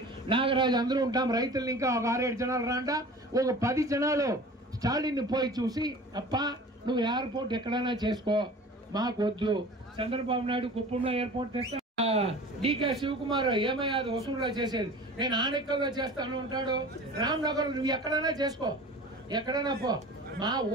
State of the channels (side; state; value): both; normal; correlation 0.41